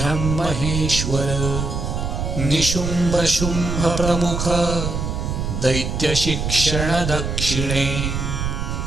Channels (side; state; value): right; noise; rumble, 2 dB below the sound